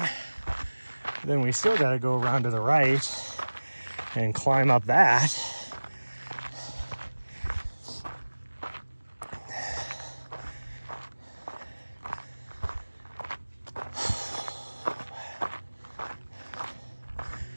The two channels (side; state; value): both; inverted; correlation -1.00